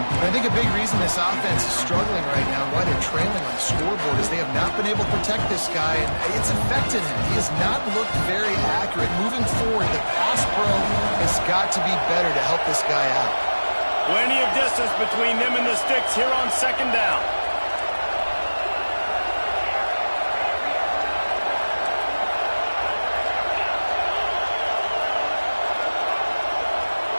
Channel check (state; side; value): inverted; both; correlation -1.00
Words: I think a big reason this offense is struggling right now and why they're trailing on the scoreboard is they have not been able to protect this guy, and it's affected him. He has not looked very accurate. Moving forward, the pass pro has got to be better to help this guy out. Plenty of distance between them and the sticks here on second down.